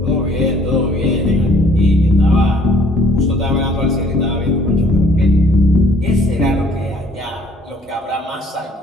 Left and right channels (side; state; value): both; normal; correlation 0.60